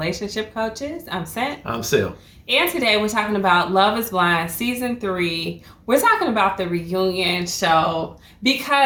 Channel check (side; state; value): both; identical; correlation 1.00